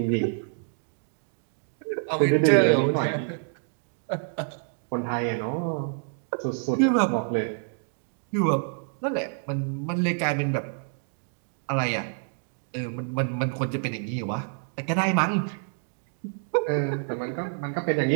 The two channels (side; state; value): left; silent; 60 dB below the other